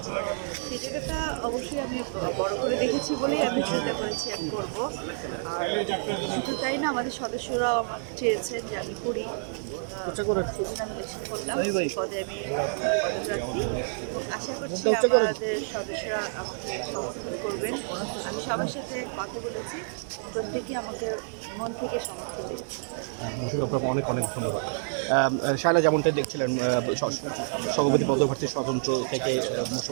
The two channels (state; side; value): silent; left; digital silence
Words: সেই জায়গাটা অবশ্যই আমি বড় করে দেখেছি বলেই আমি চিন্তা করেছি আমি করব। আর শুধু তাই না, আমাদের সদস্যরাও আমার চেয়েছেন যে আমি করি, সেজন্য আমি এসে করলাম। এই পদে আমি পদপ্রার্থী। আশা করছি আমাদের সদস্যরা আমাকে সমর্থন করবেন। আমি সবার সাথে কথা বলেছি, প্রত্যেকে আমাকে মন থেকে সমর্থন দিয়েছে। আপনাকে অনেক অনেক ধন্যবাদ। শায়লা যেমনটা দেখছিলেন, সভাপতি পদপ্রার্থী স্বতন্ত্র থেকে